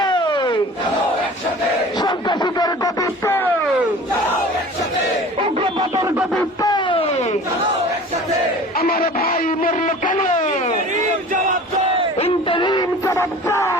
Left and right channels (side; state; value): both; normal; correlation 0.42